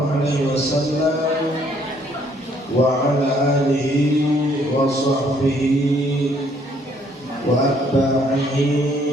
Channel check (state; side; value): normal; both; correlation 0.65